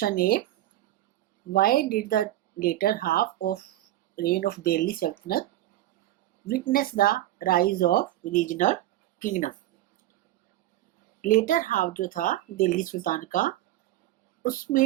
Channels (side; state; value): left; quieter; 14.4 dB